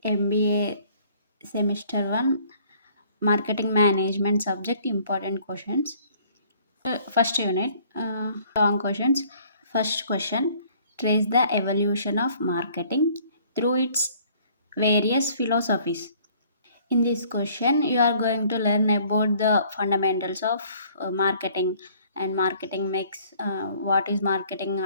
MBA Semester 1 Marketing Management subject important questions. First unit, long questions. First question, trace the evolution of marketing through its various philosophies. In this question, you are going to learn about the fundamentals of marketing and marketing mix, what is marketing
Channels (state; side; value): inverted; both; correlation -0.58